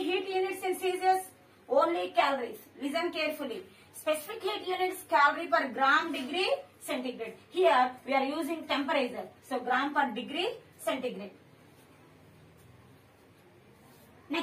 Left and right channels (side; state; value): both; identical; correlation 1.00